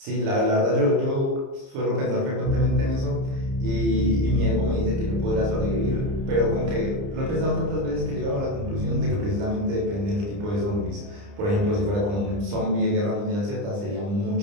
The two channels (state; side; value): late; left; 30 ms